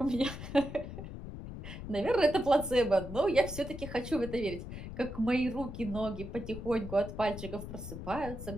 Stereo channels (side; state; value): left; noise; rumble, 9 dB below the sound